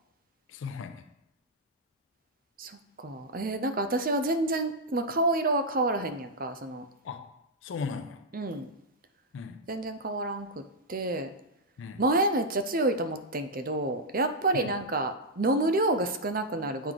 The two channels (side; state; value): both; normal; correlation -0.02